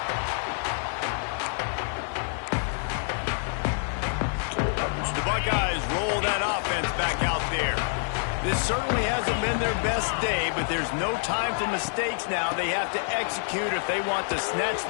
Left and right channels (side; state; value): right; silent; 59 dB below the other